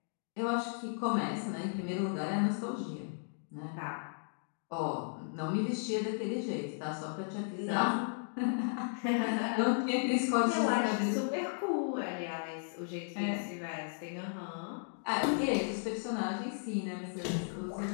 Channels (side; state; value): right; silent; digital silence